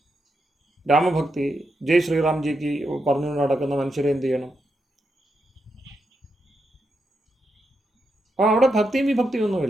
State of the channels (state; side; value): normal; both; correlation 0.84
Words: രാമഭക്തി ജയ് ശ്രീറാംജിക്ക് പറഞ്ഞുകൊണ്ട് നടക്കുന്ന മനുഷ്യരെ എന്ത് ചെയ്യണം? അപ്പോൾ അവിടെ ഭക്തിയും വിഭക്തിയും